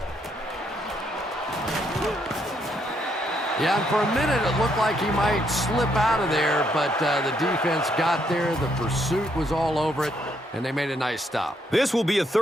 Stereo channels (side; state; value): both; normal; correlation 0.73